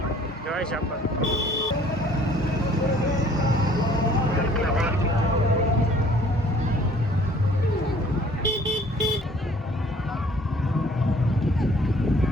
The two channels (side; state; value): both; normal; correlation 0.56